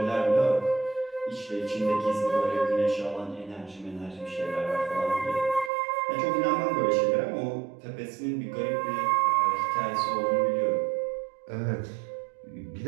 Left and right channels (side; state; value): left; drops out; at 5.7 s